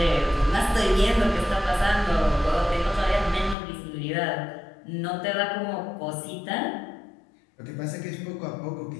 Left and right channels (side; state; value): right; drops out; at 3.6 s